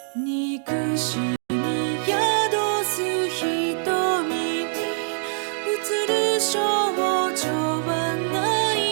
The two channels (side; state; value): left; silent; digital silence